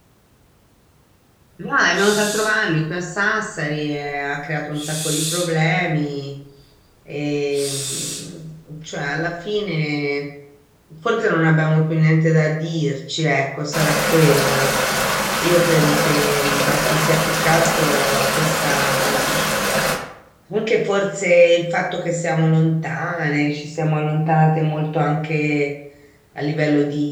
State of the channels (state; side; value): identical; both; correlation 1.00